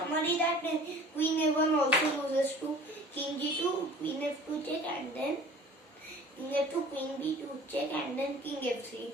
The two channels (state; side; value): normal; both; correlation 0.46